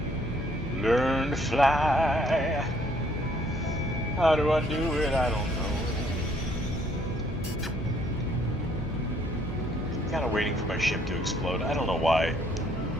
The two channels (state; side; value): normal; both; correlation 0.65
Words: Learn to fly. How do I do it? I don't know. I'm kind of waiting for my ship to explode. I don't know why.